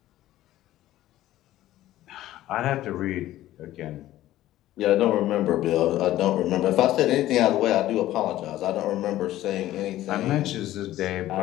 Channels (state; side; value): quieter; right; 14.5 dB